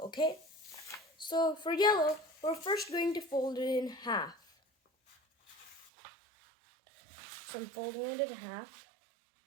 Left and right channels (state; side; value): drops out; left; at 5.9 s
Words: okay? So for yellow, we're first going to fold it in half. So I'm folding it in half.